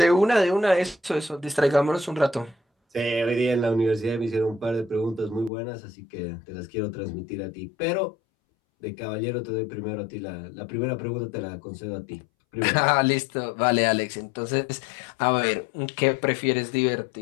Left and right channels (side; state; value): right; drops out; at 5.5 s